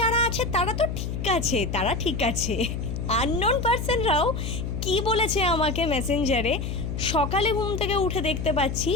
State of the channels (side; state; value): left; noise; hum, 4 dB below the sound